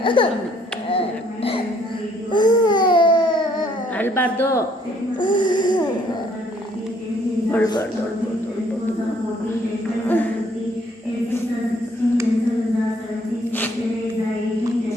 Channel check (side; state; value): both; normal; correlation 0.64